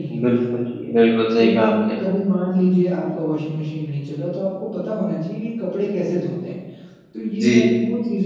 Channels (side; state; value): both; identical; correlation 1.00